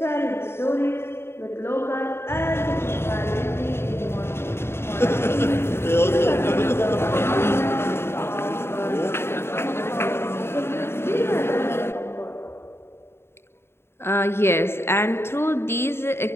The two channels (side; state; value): right; late; 0.12 ms